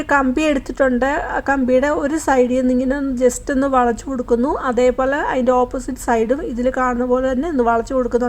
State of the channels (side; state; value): both; identical; correlation 1.00